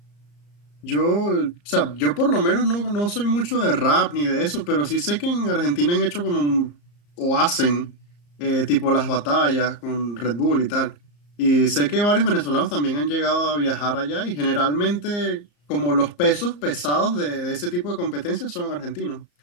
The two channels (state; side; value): late; right; 34 ms